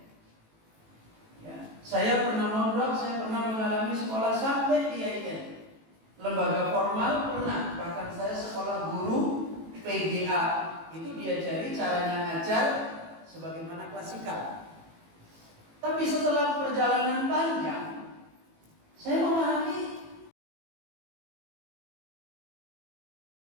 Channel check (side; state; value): left; late; 18 ms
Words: Ya, saya pernah mondok, saya pernah mengalami sekolah sampai IAIN. Lembaga formal pernah, bahkan saya sekolah guru PGA, itu diajari caranya ngajar sebagaimana klasikal. Tapi setelah perjalanan panjang, saya memahami